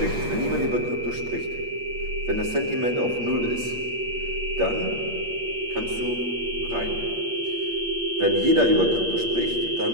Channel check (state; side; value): late; left; 8.5 ms